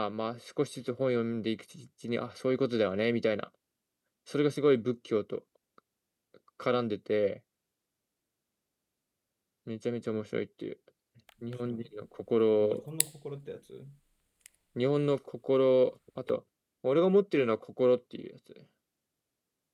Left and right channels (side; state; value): both; identical; correlation 1.00